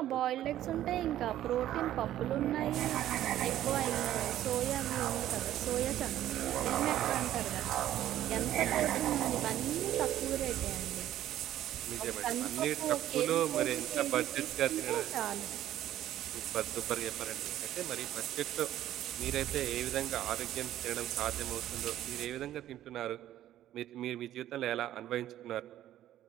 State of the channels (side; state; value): left; quieter; 12.7 dB